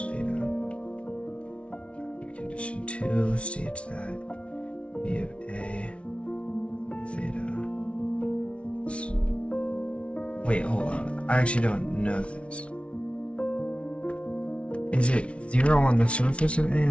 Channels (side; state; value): right; late; 0.061 ms